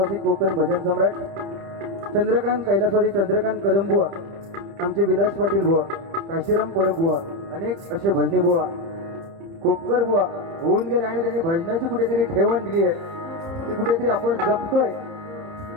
कोकण भजन सम्राट, चंद्रकांत कैलासवासी चंद्रकांत कदमबुवा, आमचे विलास पाटील बुवा, काशीराम परब बुवा, अनेक असे भजनी बुवा, खोपकर बुवा होऊन गेले आणि त्यांनी भजनाची कुठेतरी ठेवण दिली आहे. ती कुठेतरी आपण जपतोय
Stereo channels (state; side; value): late; left; 30 ms